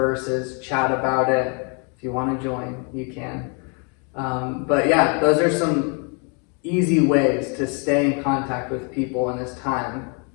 chat about it. If you want to join, you can. But yeah, those are some easy ways to stay in contact with people in this time.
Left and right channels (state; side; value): quieter; right; 36.3 dB